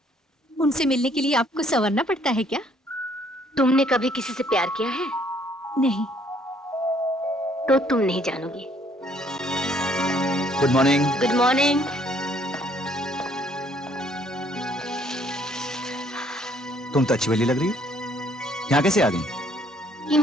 उनसे मिलने के लिए आपको संवरना पड़ता है क्या? तुमने कभी किसी से प्यार किया है? नहीं। तो तुम नहीं जानोगी। Good morning. Good morning. तुम तो अच्छी वाली लग रही हो। यहाँ कैसे आ गई? यूं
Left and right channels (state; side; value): normal; both; correlation 0.64